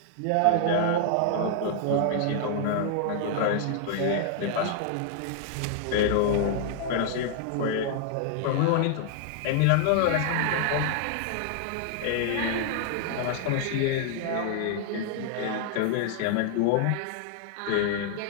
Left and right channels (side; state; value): both; different; correlation -0.01